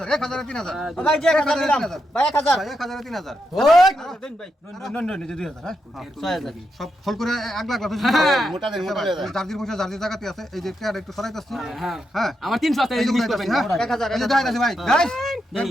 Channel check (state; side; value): normal; both; correlation 0.84